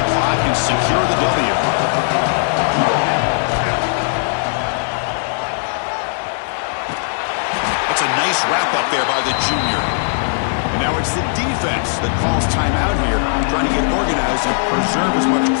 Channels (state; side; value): silent; right; digital silence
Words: clock and secure the W. That's a nice wrap-up there by the junior. And now it's the defense that calls timeout here, trying to get organized and preserve as much